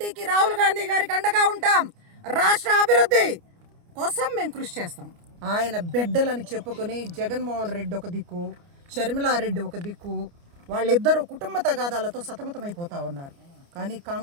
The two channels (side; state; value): left; late; 29 ms